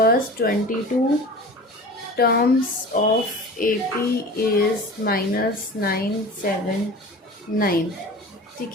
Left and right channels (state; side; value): normal; both; correlation 0.37